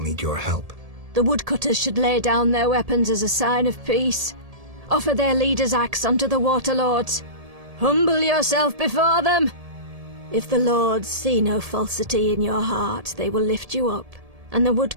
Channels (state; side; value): late; left; 1.7 ms